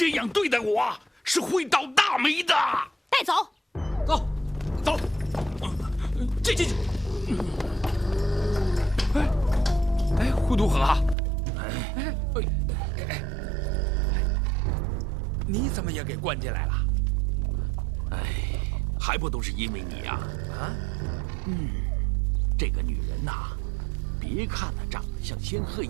样对待我是会倒大霉的。带走，走。进。哎，呼都河，你怎么也给关进来了？哎，还不都是因为你呀！这个女人呐，别看她长得像仙鹤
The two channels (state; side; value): drops out; left; at 11.2 s